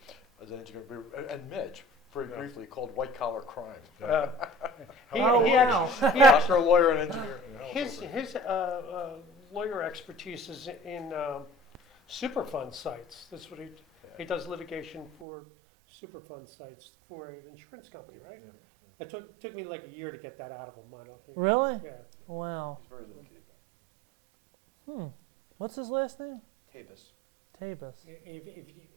as an engineer, and Mitch, very Yeah. briefly, called White Collar Crime. He, Oh, he wow. actually, he Doctor, a lawyer, and engineer. his lawyer expertise is in Superfund sites. That's what he does litigation for Superfund sites for an insurance company, right? Yeah, It took me like a year to get that out of him. I don't think. Really? Yeah. Wow. He's very little kid. What's his last name? Tavis. Tabus.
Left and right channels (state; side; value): drops out; left; at 15.1 s